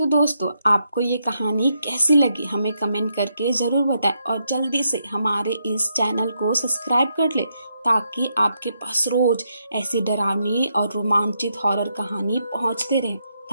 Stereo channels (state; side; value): inverted; both; correlation -0.80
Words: दोस्तों, आपको ये कहानी कैसी लगी हमें कमेंट करके जरूर बताएं और जल्दी से हमारे इस चैनल को सब्सक्राइब कर ले ताकि आपके पास रोज ऐसी डरावनी और रोमांचित हॉरर कहानी पहुंचते रहे।